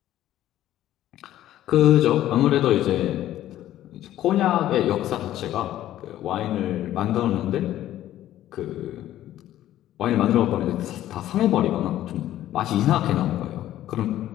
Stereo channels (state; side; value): quieter; right; 13.2 dB